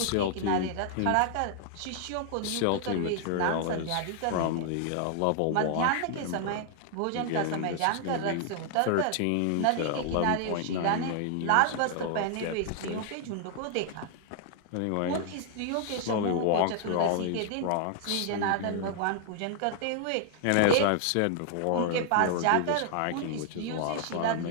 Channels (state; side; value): different; both; correlation 0.00